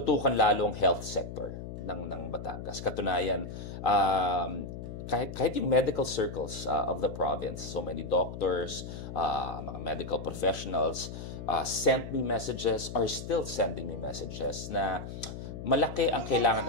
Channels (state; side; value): noise; left; hum, 9 dB below the sound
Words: lalo ang health sector ng Batangas. Katunayan, kahit yung medical circles of the province, so many doctors, mga medical professionals sent me messages, are still sending me messages na malaki ang kailangan